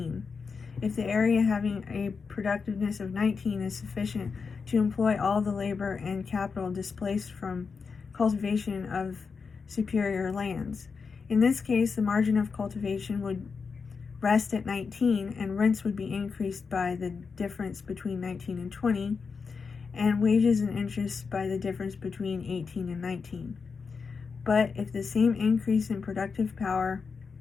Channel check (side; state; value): right; quieter; 5.2 dB